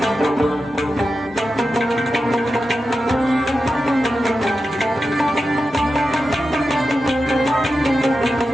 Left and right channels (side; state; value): both; normal; correlation 0.91